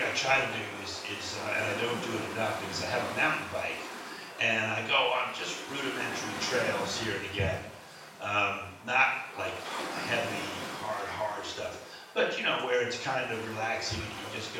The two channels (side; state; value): both; identical; correlation 1.00